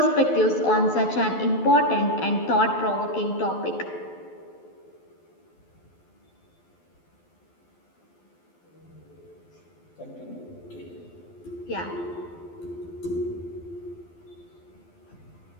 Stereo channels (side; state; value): right; late; 12 ms